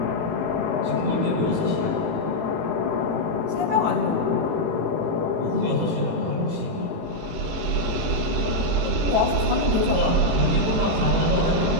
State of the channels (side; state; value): left; late; 19 ms